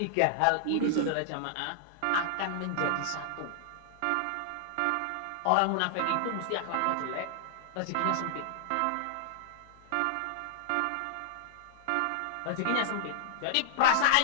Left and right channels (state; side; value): different; both; correlation -0.01